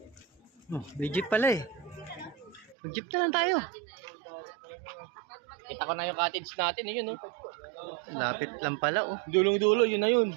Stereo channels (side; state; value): left; drops out; at 2.8 s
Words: Oh, may jeep pala eh. Mag-jeep na lang tayo. Kita ko na yung cottage natin, yun, no? Lapit lang pala oh. Dulong-dulo, yun na